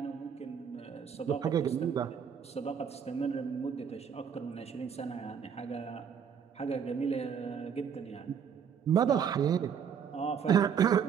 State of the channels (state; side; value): quieter; left; 7.5 dB